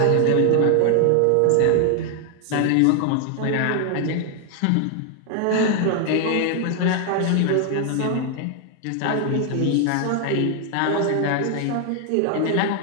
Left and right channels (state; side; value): different; both; correlation 0.00